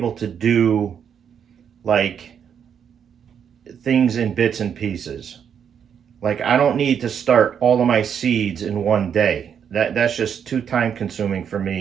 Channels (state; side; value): quieter; left; 7.9 dB